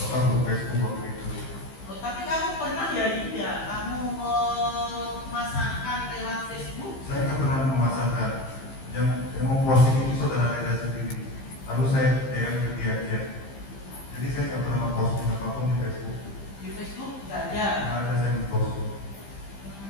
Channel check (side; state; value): right; late; 15 ms